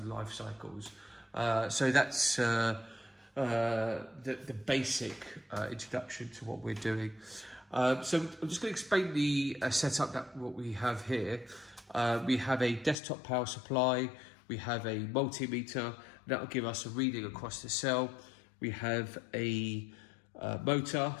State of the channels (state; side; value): drops out; right; at 13.0 s